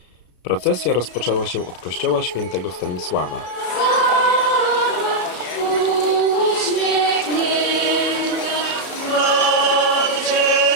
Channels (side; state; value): right; late; 33 ms